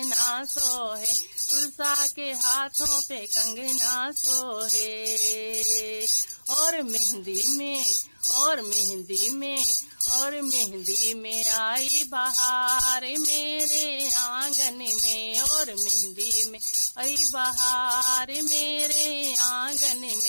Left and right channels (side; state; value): both; inverted; correlation -1.00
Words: सोहे, तुलसा के हाथों पे कंगना सोहे, और मेहंदी में, और मेहंदी में, और मेहंदी में आई बहार मेरे आंगन में, और मेहंदी में आई बहार मेरे आंगन